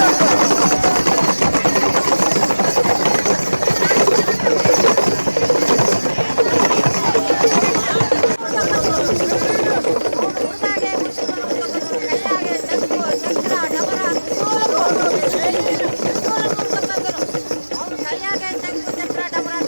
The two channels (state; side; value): inverted; both; correlation -1.00